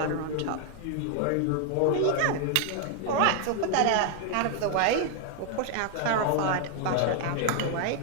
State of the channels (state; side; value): different; both; correlation 0.00